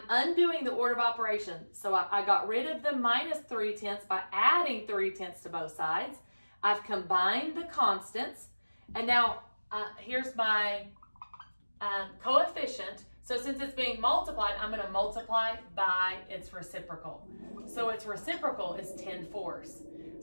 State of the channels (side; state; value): both; inverted; correlation -1.00